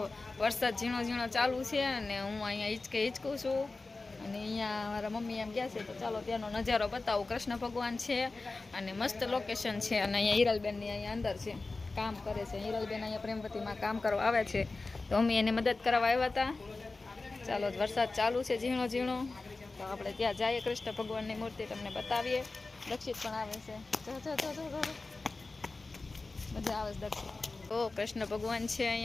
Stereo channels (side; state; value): right; quieter; 3.5 dB